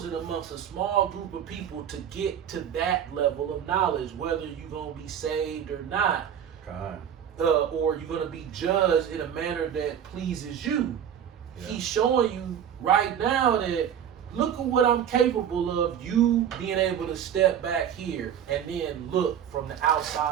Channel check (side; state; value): left; quieter; 9.1 dB